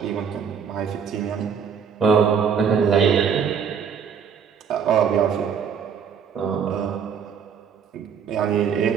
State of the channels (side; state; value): left; quieter; 7.1 dB